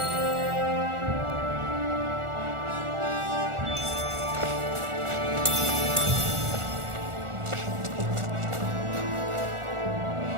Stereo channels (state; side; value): late; left; 1.4 ms